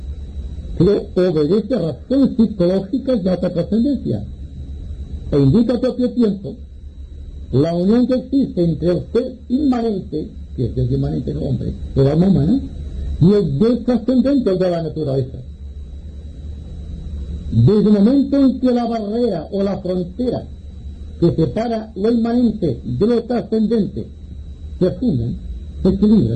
Pero obedece a razones psicológicas de alta trascendencia e indica al propio tiempo la unión que existe entre el ser inmanente, que es el inmanente del hombre, el alma humana, y el Dios trascendente de la naturaleza. Desde el momento en que la barrera o la frontera que separa lo inmanente de lo trascendente se funden, se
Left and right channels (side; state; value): both; identical; correlation 1.00